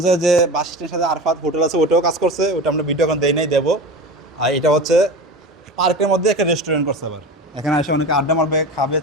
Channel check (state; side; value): normal; both; correlation 0.29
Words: যে বাস স্ট্যান্ডের সাথে আরফাত হোটেল আছে ওটাও কাজ করছে, ওটা আমরা ভিডিও এখন দেই নাই, দেবো। আর এটা হচ্ছে পার্কের মধ্যে একটা রেস্টুরেন্ট করছে। আবার এখানে এসে অনেকে আড্ডা মারবে, খাবে,